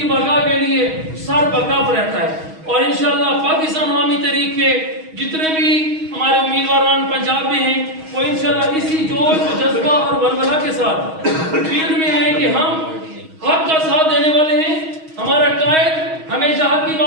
بقا کے لیے سر بکف رہتا ہے. اور انشاءاللہ پاکستان عوامی تحریک کے جتنے بھی ہمارے امیدواران پنجاب میں ہیں وہ انشاءاللہ اسی جوش و جذبہ اور ولولہ کے ساتھ فیلڈ میں ہیں کہ ہم حق کا ساتھ دینے والے ہیں. ہمارا قائد ہمیشہ حق کی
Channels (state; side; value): late; left; 6.3 ms